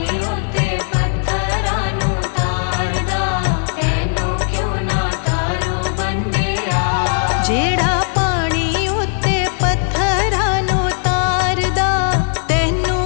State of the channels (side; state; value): right; silent; 63 dB below the other